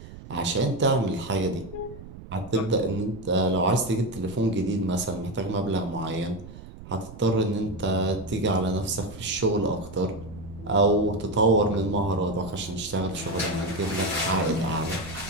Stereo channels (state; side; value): noise; right; rumble, 15 dB below the sound